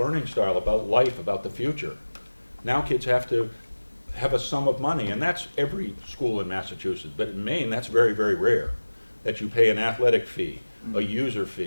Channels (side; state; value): both; inverted; correlation -1.00